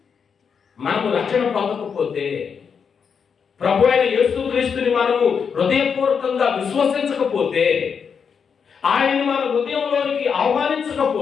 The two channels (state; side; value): quieter; right; 6.5 dB